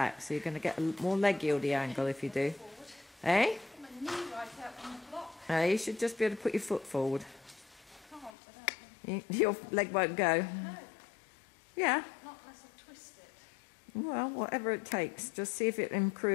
so you're going to get a more leg yieldy angle if you do. Eh? My knee right out on the block. You should just be able to put your foot forward. Can't without me. Your leg won't go. No, Yeah. not unless I twist it. Well, whatever it takes. Just see if it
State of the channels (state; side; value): drops out; right; at 8.3 s